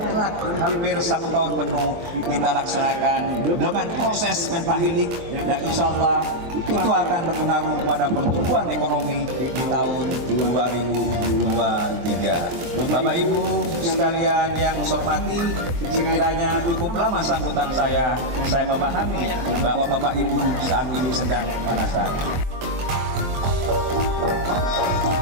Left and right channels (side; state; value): left; late; 23 ms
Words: hampir 1 tahun penuh kita laksanakan dengan proses mental healing, dan insya Allah itu akan berpengaruh pada pertumbuhan ekonomi di tahun 2023. Bapak Ibu sekalian yang saya hormati, sekiranya cukup lama sambutan saya memahami bahwa Bapak Ibu saat ini sedang merasa.